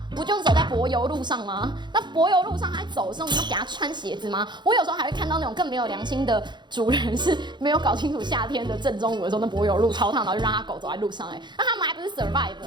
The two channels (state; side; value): late; left; 0.22 ms